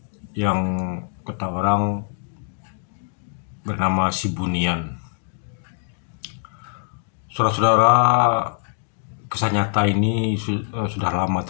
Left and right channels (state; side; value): silent; right; 63 dB below the other